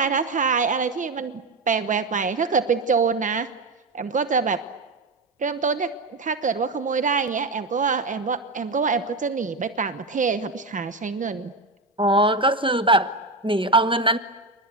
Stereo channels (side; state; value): left; quieter; 3.2 dB